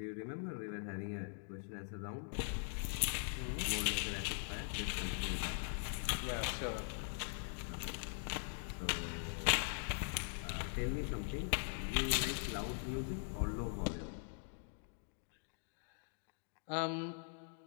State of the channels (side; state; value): right; silent; digital silence